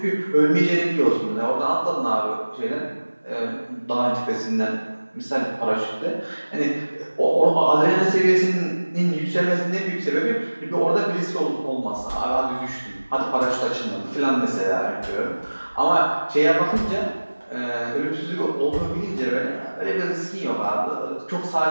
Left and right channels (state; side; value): inverted; both; correlation -1.00